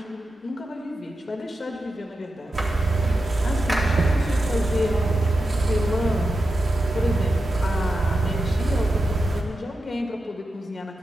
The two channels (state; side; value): normal; both; correlation 0.90